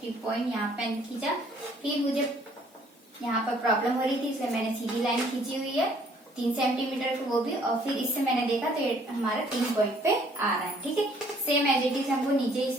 पॉइंट यहाँ पे खींचा, फिर मुझे यहाँ पर प्रॉब्लम हो रही थी इसलिए मैंने सीधी लाइन खींची हुई है 3 सेंटीमीटर की, वो भी, और फिर इससे मैंने देखा तो ये हमारा 3 पॉइंट पे आ रहा है। ठीक है, सेम एज इट इज हमको नीचे इस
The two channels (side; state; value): both; normal; correlation 0.61